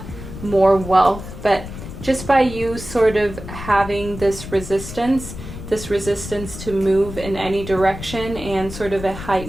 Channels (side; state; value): left; noise; rumble, 11 dB below the sound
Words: more wealth, but just by you sort of having this resistance to move in any direction and sort of a